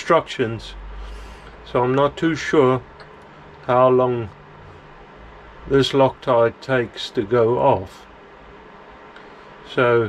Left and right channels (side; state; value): both; identical; correlation 1.00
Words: so I'm not too sure how long this Loctite takes to go off.